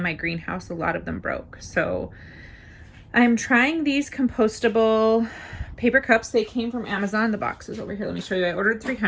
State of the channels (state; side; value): identical; both; correlation 1.00